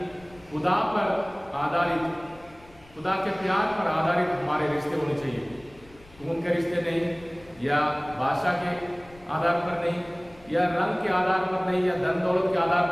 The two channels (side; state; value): left; noise; rumble, 25 dB below the sound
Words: खुदा पर आधारित, खुदा के प्यार पर आधारित हमारे रिश्ते होने चाहिए। खून के रिश्ते नहीं, या भाषा के आधार पर नहीं, या रंग के आधार पर नहीं, या धन दौलत के आधार